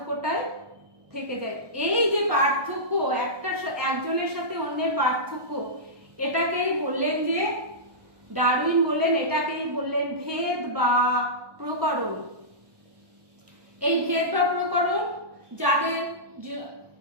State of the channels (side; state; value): left; late; 1.2 ms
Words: থেকে যায়। এই যে পার্থক্য, একজনের সাথে অন্যের পার্থক্য, এটাকেই বললেন যে ডারউইন বললেন, এটাকেই বললেন ভেদ বা প্রকরণ। এই ভেদ বা প্রকরণ, যাদের